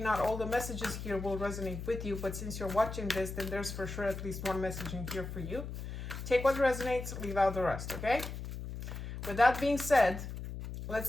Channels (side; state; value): left; noise; hum, 7 dB below the sound